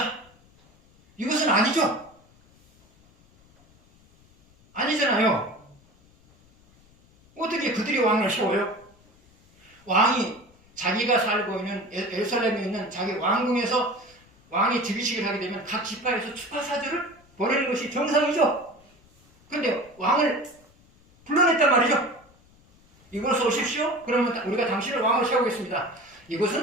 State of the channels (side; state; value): left; noise; rumble, 29 dB below the sound